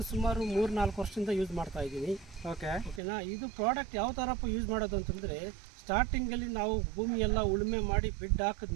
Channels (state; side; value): drops out; left; at 3.0 s